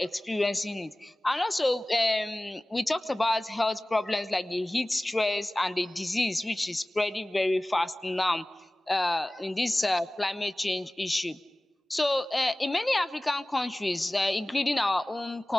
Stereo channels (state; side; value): normal; both; correlation 0.98